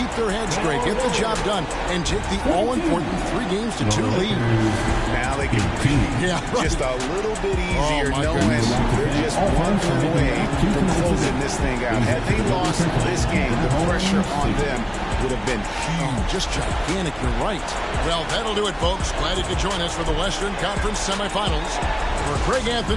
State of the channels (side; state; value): both; identical; correlation 1.00